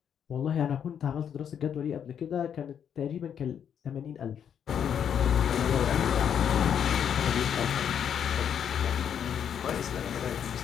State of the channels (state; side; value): quieter; right; 8.5 dB